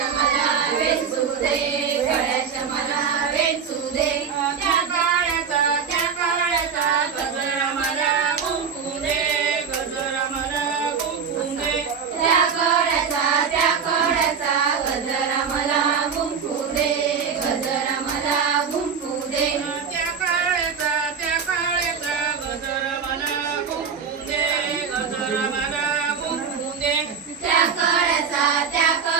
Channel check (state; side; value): quieter; left; 6.6 dB